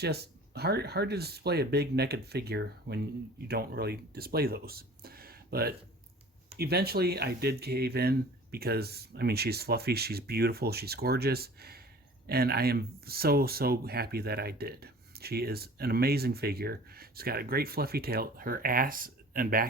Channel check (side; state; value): both; normal; correlation 0.45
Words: just hard to display a big naked figure when you don't really display those. But eventually I did cave in because, I mean, she's fluffy, she's beautiful, she's gorgeous, and I am so happy that I did. She is an amazing figure. She's got a great fluffy tail. Her ass and